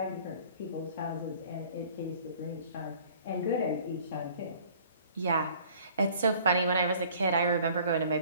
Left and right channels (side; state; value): both; inverted; correlation -0.52